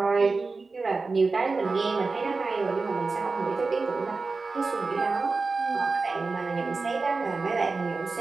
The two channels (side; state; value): left; quieter; 4.0 dB